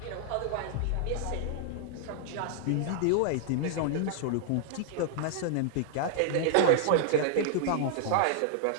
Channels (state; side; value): different; both; correlation -0.01